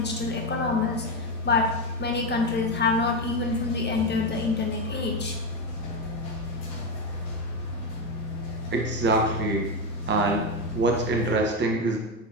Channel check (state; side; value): normal; both; correlation 0.10